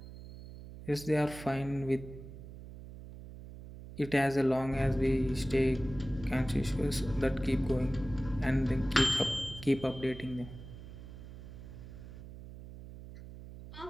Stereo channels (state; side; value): noise; right; hum, 14 dB below the sound